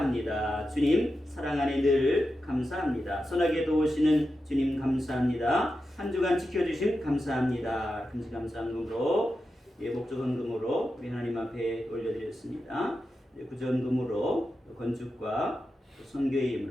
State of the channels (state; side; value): normal; both; correlation 0.90